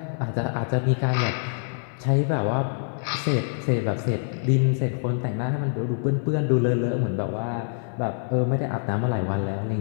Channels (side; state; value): right; silent; 61 dB below the other